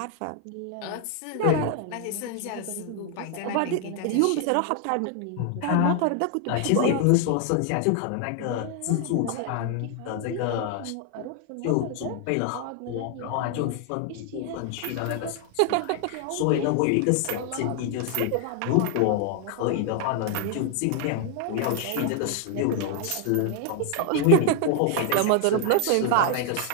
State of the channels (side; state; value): both; different; correlation 0.00